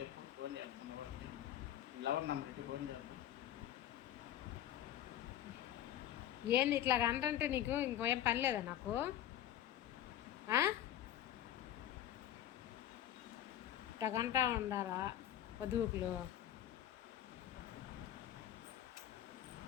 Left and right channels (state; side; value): quieter; right; 11.9 dB